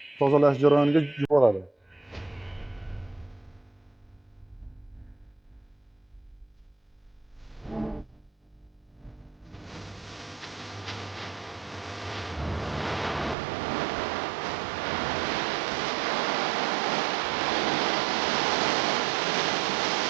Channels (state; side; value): drops out; left; at 13.4 s